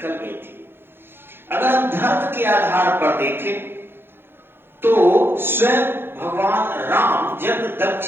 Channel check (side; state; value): left; late; 0.10 ms